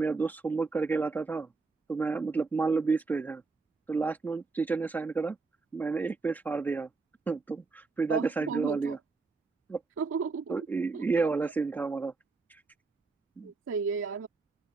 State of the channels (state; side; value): quieter; left; 4.1 dB